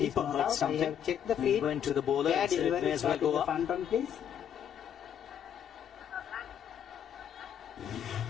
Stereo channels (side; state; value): right; quieter; 9.0 dB